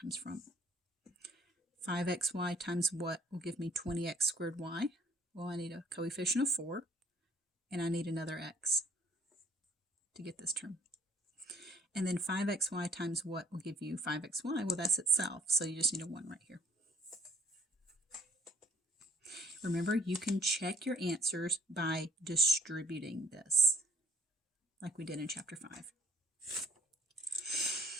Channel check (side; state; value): both; normal; correlation 0.57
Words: from. 5xy times what will give me 20x squared y? Well, I need a coefficient of 4, and I need another x to get this term. And then 5xy times what will give you 5xy? Well, that's itself, so you just need a 1 right here. Remember, you can check your answers by distributing this, like we did in chapter 5.